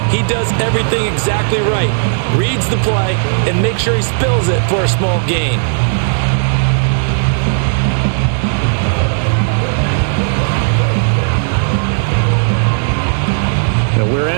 He does everything exactly right. Reads the play and makes sure he spills it for a small gain. Now we're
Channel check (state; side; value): silent; left; digital silence